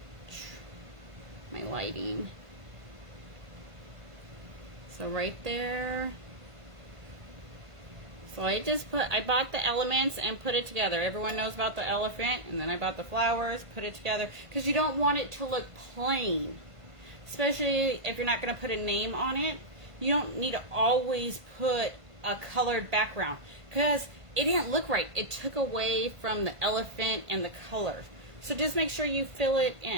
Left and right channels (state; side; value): late; left; 1.5 ms